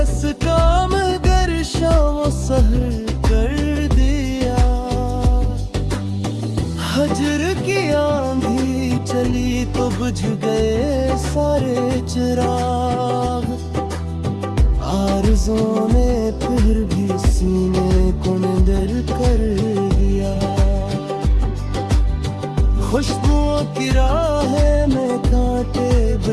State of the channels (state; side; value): identical; both; correlation 1.00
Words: मगर शाम सहर कर दिया। हजर की आंधी चली तो बुझ गए सारे चिराग, आरज़ों ने फिर भी सीने को निडर कर दिया। खुशबुओं की राहें में कांटे